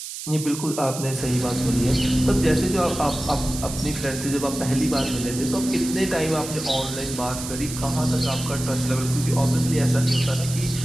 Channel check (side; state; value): right; noise; hiss, 9 dB below the sound